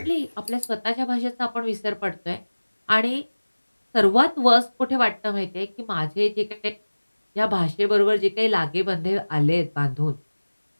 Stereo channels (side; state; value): both; inverted; correlation -1.00